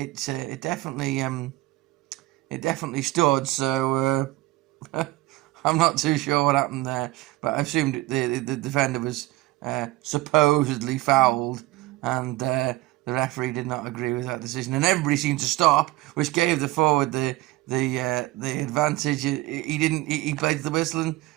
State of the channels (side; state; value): left; quieter; 18.8 dB